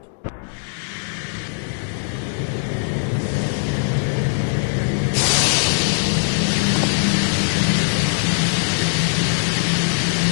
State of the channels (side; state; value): right; silent; digital silence